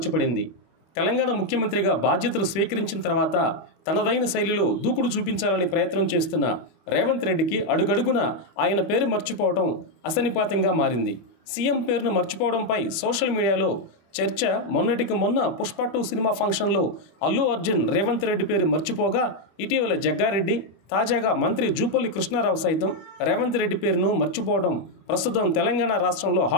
తెలంగాణ ముఖ్యమంత్రిగా బాధ్యతలు స్వీకరించిన తర్వాత తనదైన శైలిలో దూకుడు చూపించాలని ప్రయత్నం చేస్తున్న రేవంత్ రెడ్డికి అడుగడుగున ఆయన పేరు మర్చిపోవడం అసనిపాతంగా మారింది. సీఎం పేరును మర్చిపోవడంపై సోషల్ మీడియాలో చర్చ మొన్నటికి మొన్న పుష్ప 2 సినిమా ఫంక్షన్లో అల్లు అర్జున్ రేవంత్ రెడ్డి పేరు మర్చిపోగా, ఇటీవల జగ్గారెడ్డి, తాజాగా మంత్రి జూపల్లి కృష్ణారావు సైతం రేవంత్ రెడ్డి పేరును మర్చిపోవడం ప్రస్తుతం తెలంగాణ రాష్ట్రంలో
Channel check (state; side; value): late; right; 25 ms